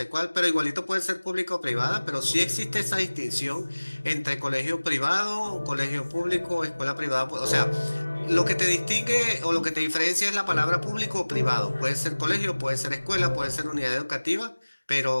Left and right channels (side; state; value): both; inverted; correlation -1.00